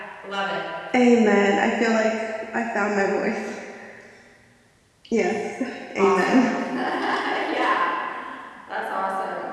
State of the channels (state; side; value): identical; both; correlation 1.00